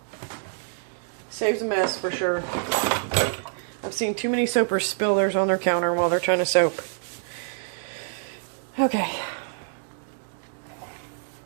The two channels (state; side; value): silent; left; digital silence